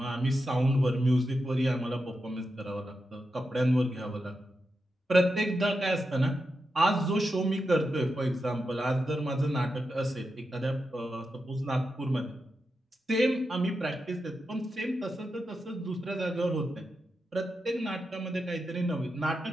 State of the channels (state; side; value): normal; both; correlation 0.88